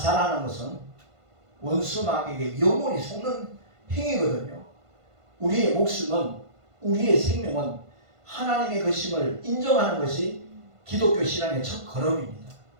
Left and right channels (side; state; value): left; late; 1.5 ms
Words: 것은 원수 마귀에게 영원히 속는 행위거든요. 우리의 목숨은, 우리의 생명은 하나님의 것임을 인정하는 것이 기독교 신앙의 첫 걸음입니다.